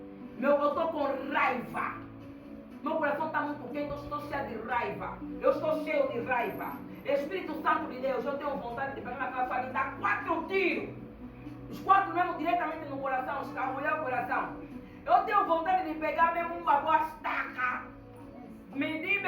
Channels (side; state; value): both; identical; correlation 1.00